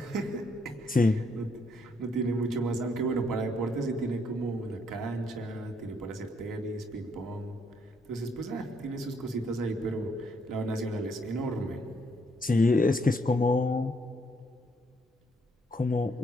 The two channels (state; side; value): normal; both; correlation 0.72